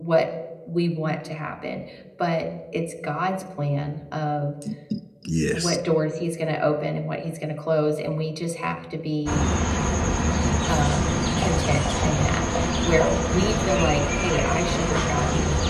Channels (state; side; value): identical; both; correlation 1.00